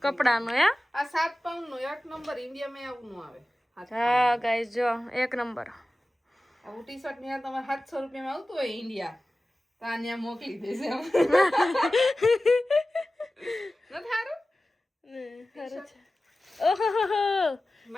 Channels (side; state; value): both; normal; correlation 0.96